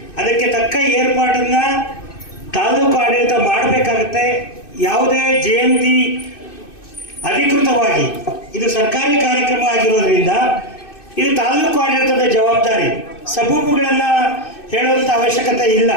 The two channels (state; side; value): late; right; 2.6 ms